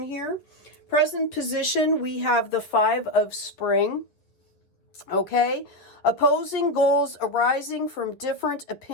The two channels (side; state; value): right; late; 10 ms